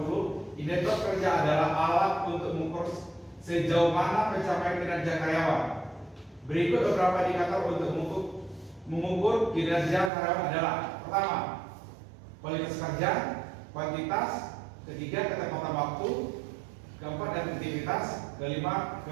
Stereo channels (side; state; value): left; drops out; at 10.1 s